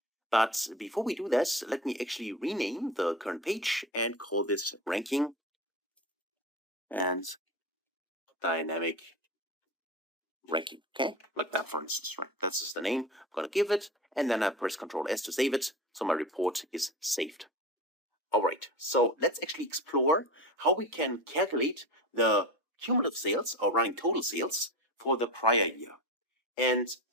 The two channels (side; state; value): both; normal; correlation 0.28